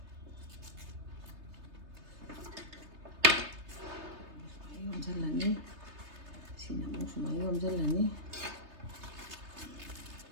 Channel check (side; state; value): left; late; 3.3 ms